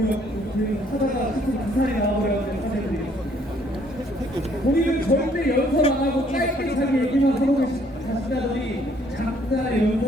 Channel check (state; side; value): normal; both; correlation 0.64